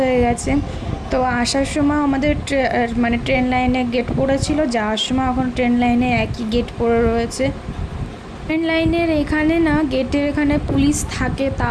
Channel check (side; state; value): both; identical; correlation 1.00